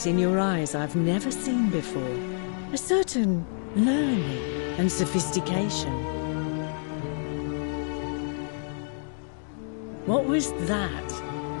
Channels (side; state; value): right; silent; digital silence